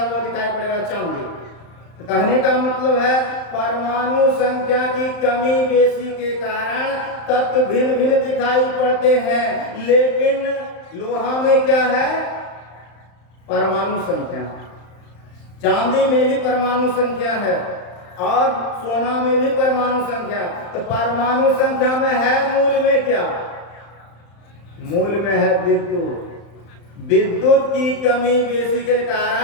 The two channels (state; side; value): late; right; 35 ms